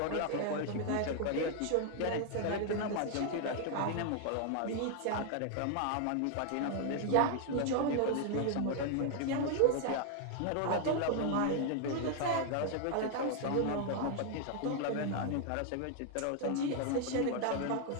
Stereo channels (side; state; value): both; different; correlation 0.00